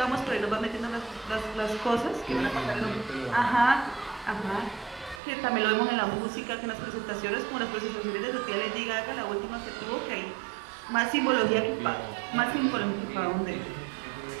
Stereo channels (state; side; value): drops out; left; at 5.2 s